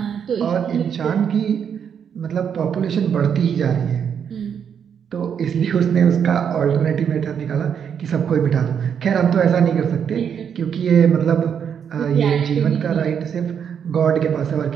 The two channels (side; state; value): left; quieter; 7.8 dB